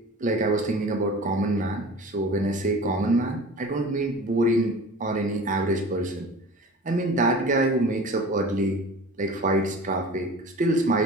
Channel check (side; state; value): both; normal; correlation 0.39